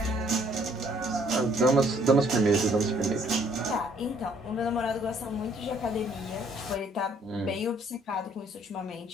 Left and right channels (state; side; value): normal; both; correlation 0.62